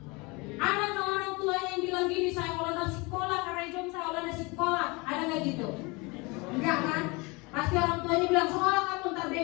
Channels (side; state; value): right; quieter; 26.7 dB